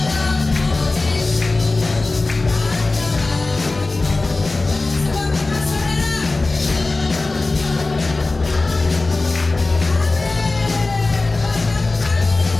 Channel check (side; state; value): right; quieter; 3.3 dB